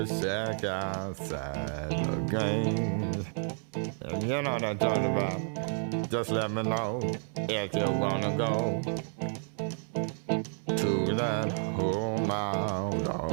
shack outside the games. And you know what I'm talking about. Just let me know if you wanna go to that home out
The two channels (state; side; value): silent; left; 57 dB below the other